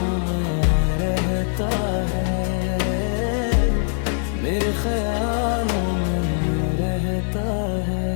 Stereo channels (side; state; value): right; silent; 64 dB below the other